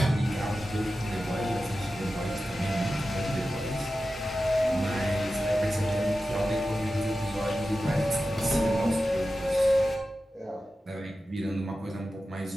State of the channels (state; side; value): normal; both; correlation 0.93